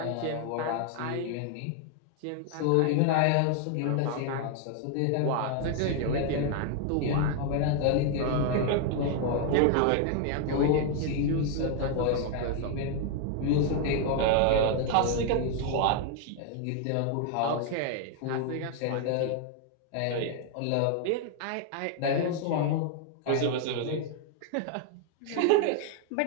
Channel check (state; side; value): different; both; correlation 0.00